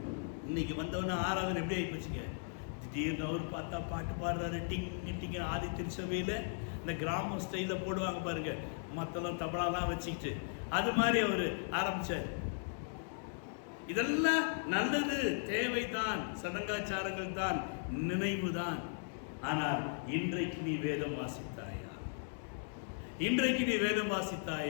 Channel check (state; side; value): silent; right; digital silence